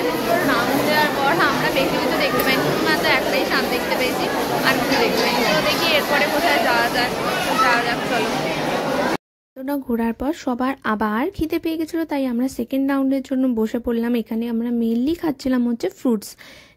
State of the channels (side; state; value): both; identical; correlation 1.00